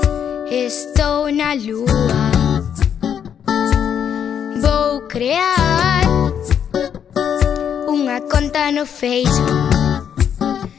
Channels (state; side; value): quieter; right; 8.4 dB